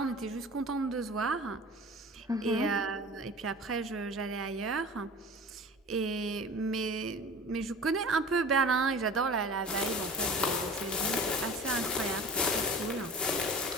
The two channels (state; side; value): normal; both; correlation 0.39